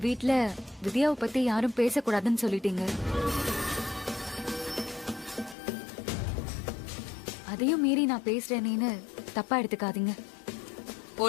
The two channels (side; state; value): right; drops out; at 5.6 s